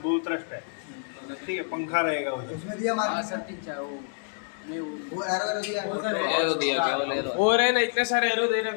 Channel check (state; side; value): silent; right; digital silence